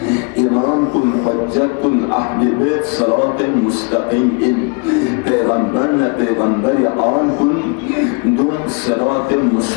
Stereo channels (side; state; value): right; quieter; 33.8 dB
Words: امام کن حجت کن اہل بیت صراط مستقیم ان پیغمبر آن کن دوم صراط